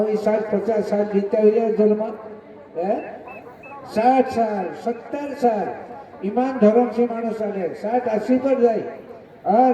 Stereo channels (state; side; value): identical; both; correlation 1.00